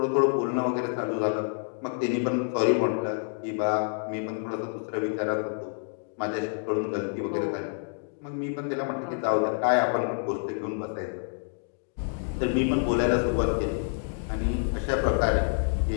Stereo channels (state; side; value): silent; right; 59 dB below the other